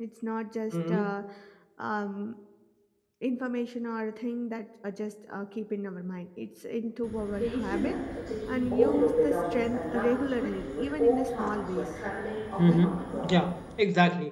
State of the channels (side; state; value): both; identical; correlation 1.00